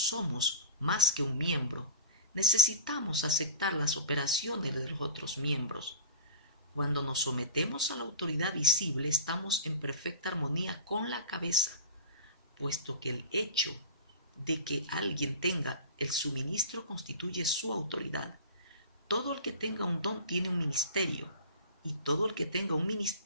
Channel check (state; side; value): inverted; both; correlation -0.37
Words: más que un miembro. Necesitamos aceptar las operaciones de los otros miembros. Cuando nos sometemos a la autoridad visible, estamos en perfecta armonía con la cabeza, puesto que el hecho de que alguien tenga el suministro constituye su autoridad. Todo el que tenga un don tiene un ministerio, y todo el que tenga un